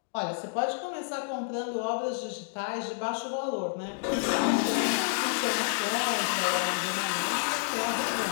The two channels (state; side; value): silent; right; digital silence